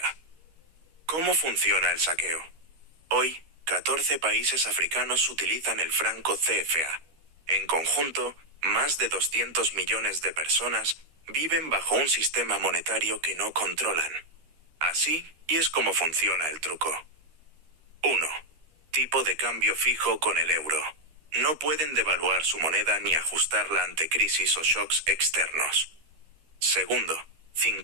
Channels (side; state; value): left; late; 13 ms